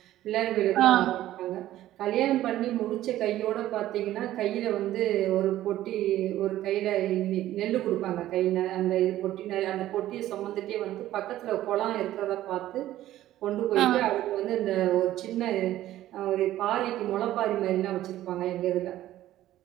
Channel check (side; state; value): left; quieter; 13.9 dB